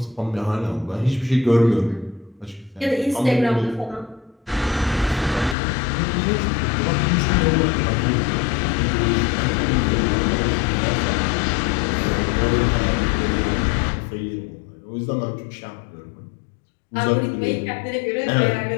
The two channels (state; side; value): drops out; right; at 5.6 s